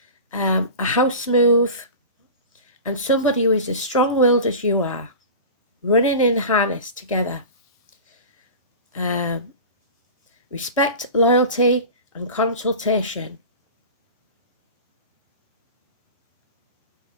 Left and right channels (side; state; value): both; inverted; correlation -0.33